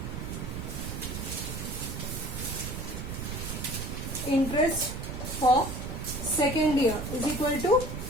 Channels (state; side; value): noise; right; rumble, 5 dB below the sound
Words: interest for second year is equal to